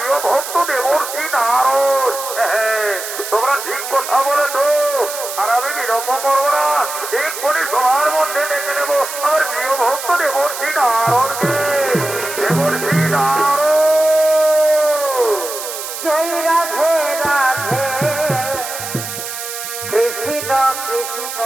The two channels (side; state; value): right; noise; hiss, 8 dB below the sound